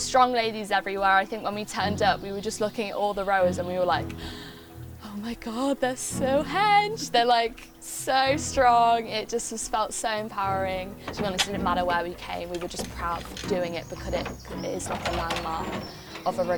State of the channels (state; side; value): identical; both; correlation 1.00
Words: ladies everywhere. I think when we turned up, we were just looking at all the rowers and we were like, oh my God, they're so hench. They're like so strong. It just felt so empowering. To be honest, it didn't matter where we came. We were just proud of doing it because it is like a landmark of a